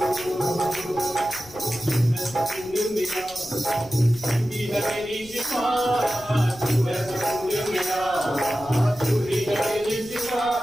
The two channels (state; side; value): noise; left; rumble, 21 dB below the sound